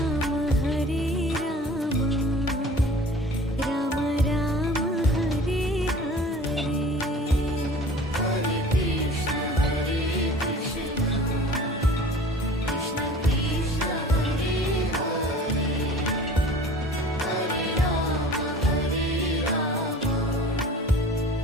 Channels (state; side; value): normal; both; correlation 0.44